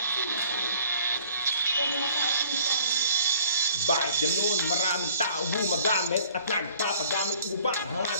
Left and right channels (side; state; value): both; inverted; correlation -0.54